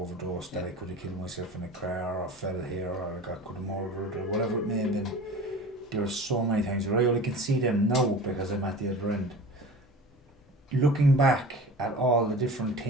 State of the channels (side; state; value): both; normal; correlation 0.38